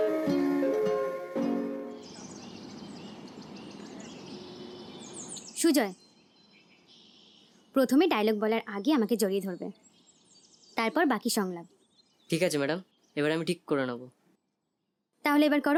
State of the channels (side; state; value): both; identical; correlation 1.00